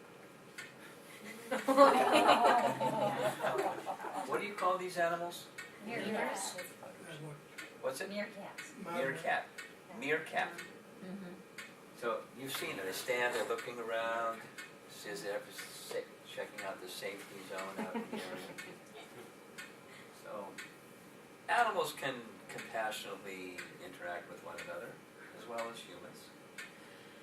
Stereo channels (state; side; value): identical; both; correlation 1.00